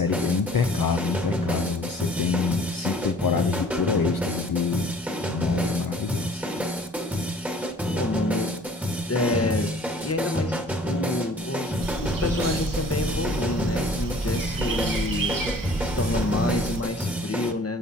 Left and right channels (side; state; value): both; normal; correlation 0.51